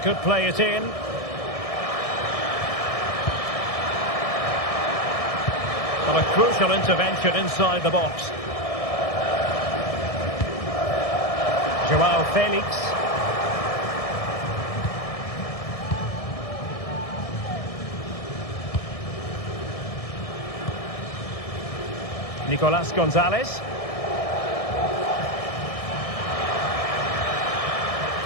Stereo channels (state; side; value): late; right; 1.6 ms